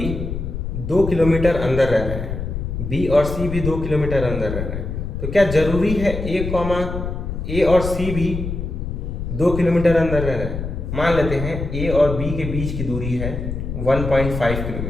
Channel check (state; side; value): noise; left; rumble, 5 dB below the sound